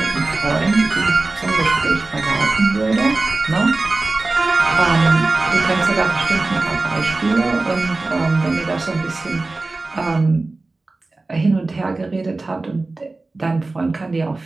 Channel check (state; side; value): quieter; left; 3.3 dB